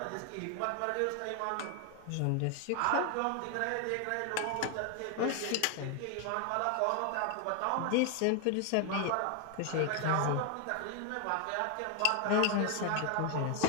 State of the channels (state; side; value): different; both; correlation 0.01